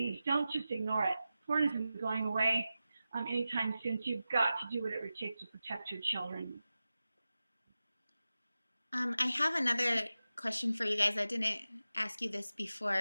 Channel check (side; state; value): both; inverted; correlation -0.94